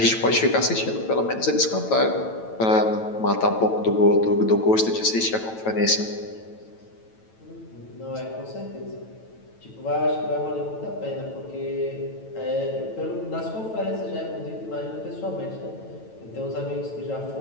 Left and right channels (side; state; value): right; late; 9.1 ms